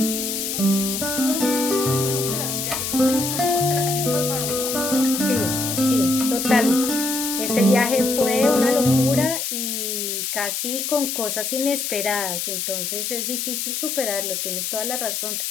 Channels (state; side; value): noise; left; hiss, 2 dB below the sound